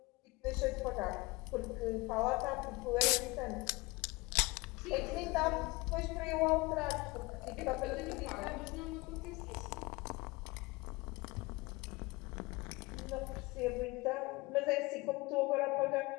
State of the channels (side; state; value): right; quieter; 23.6 dB